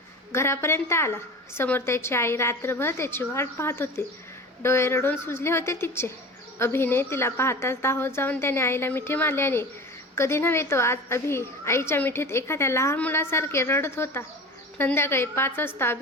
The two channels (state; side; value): normal; both; correlation 0.34